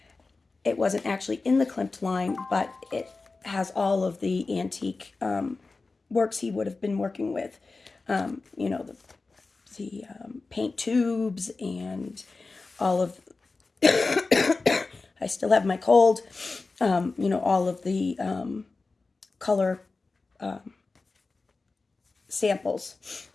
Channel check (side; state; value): right; quieter; 3.8 dB